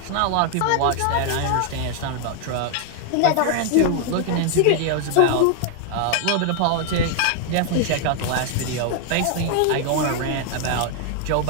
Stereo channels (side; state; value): both; different; correlation 0.00